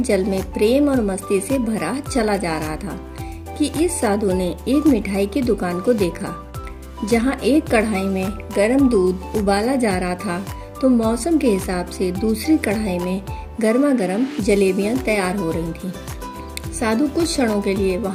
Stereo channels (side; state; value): both; identical; correlation 1.00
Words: में प्रेम और मस्ती से भरा चला जा रहा था कि इस साधु ने एक मिठाई की दुकान को देखा जहां एक कढ़ाई में गर्म दूध उबाला जा रहा था तो मौसम के हिसाब से दूसरी कढ़ाई में गर्मा गर्म जलेबियां तैयार हो रही थीं। साधु कुछ क्षणों के लिए